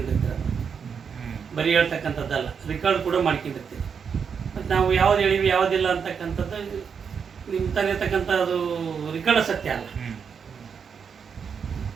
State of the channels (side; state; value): left; quieter; 6.5 dB